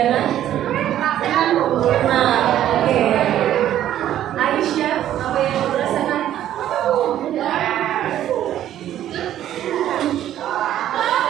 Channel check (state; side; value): quieter; left; 11.9 dB